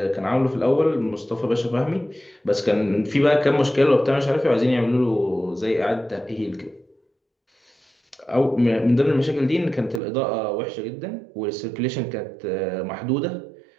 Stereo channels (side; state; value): left; drops out; at 10.0 s